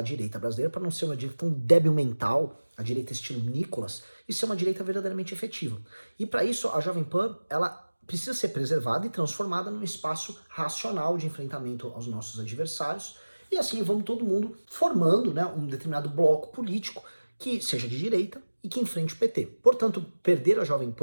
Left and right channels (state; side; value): inverted; both; correlation -1.00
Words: direita brasileira para não ser uma direita tão débil mental, a direita estilo Nicolas, e ser uma direita verdadeiramente efetiva. E para isso, a Jovem Pan, ela precisa ser preservada e transformada num espaço racional de enfrentamento aos nossos adversários, e assim vamos todo mundo formando, né, um determinado bloco político que seja de direita e que enfrente o PT. Portanto, perder a Jovem